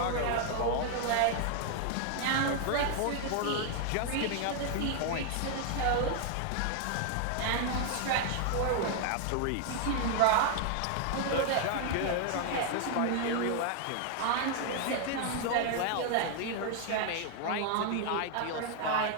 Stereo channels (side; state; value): both; different; correlation 0.00